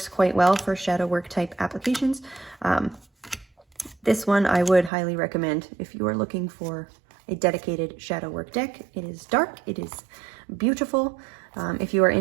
quite well for shadow work type applications. This one I would highly recommend if you are looking for a dedicated shadow work deck. It is dark, it is beautiful. If you are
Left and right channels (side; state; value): left; drops out; at 4.9 s